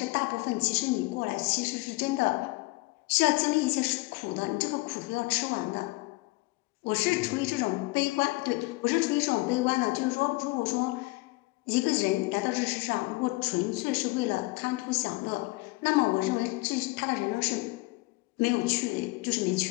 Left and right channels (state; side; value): quieter; right; 23.4 dB